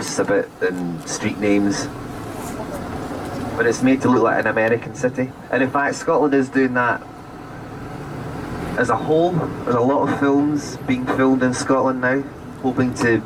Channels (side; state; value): both; identical; correlation 1.00